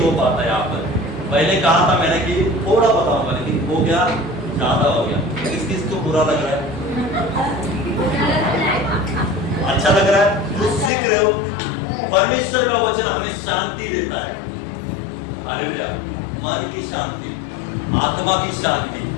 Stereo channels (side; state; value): right; drops out; at 10.9 s